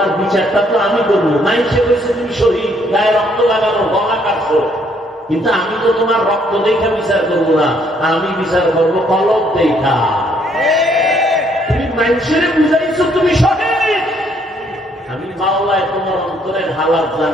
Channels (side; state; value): both; normal; correlation 0.68